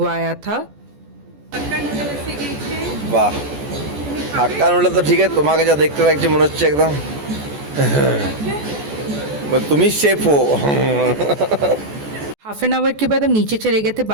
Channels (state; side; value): late; left; 14 ms